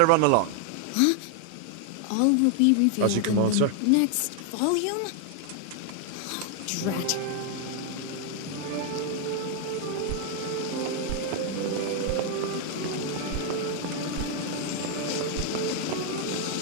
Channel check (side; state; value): both; different; correlation 0.00